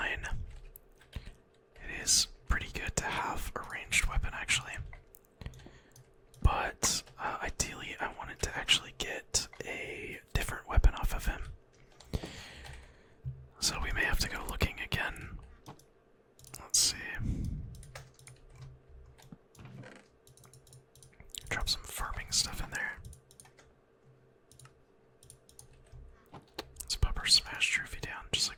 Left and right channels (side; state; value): both; identical; correlation 1.00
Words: It is pretty good to have a ranged weapon, actually. But ideally, I wanted to actually get a different weapon off of him. So we may have to go looking again. Let's see. Drop some farming stuff in there. Let's pop our smash trophy down, just